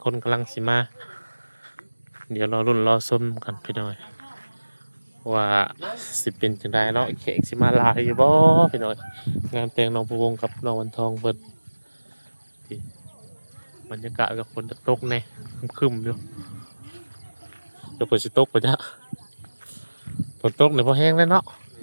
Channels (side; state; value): both; inverted; correlation -1.00